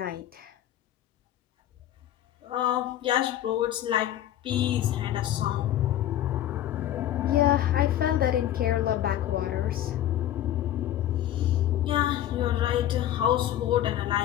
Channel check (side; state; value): right; quieter; 12.2 dB